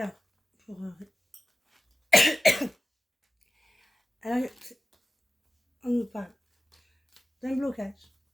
pour alors, on nous parle d'un blocage.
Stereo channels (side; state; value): both; normal; correlation 0.96